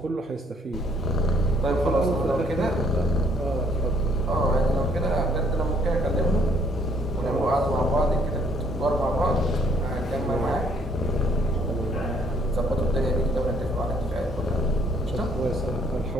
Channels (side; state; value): both; normal; correlation 0.64